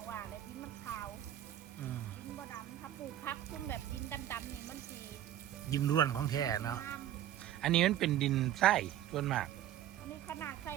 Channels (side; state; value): left; quieter; 11.8 dB